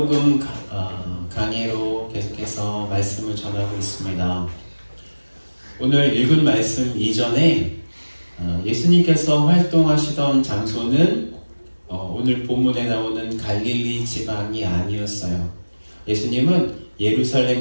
강해로 계속해서 말씀을 전하고 있습니다. 오늘 읽은 말씀 이전에 예수님께서 활동하시던 장소는 오늘 본문에 나오는 갈릴리 지방이 아니었어요. 예수님은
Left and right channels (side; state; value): both; inverted; correlation -1.00